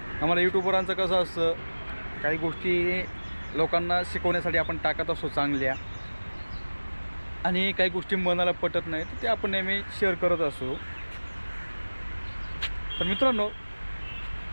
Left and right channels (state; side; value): inverted; both; correlation -1.00